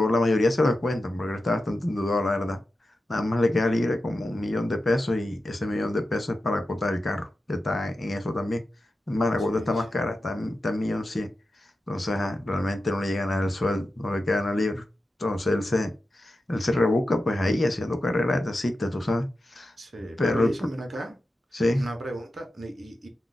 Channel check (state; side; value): normal; both; correlation 0.92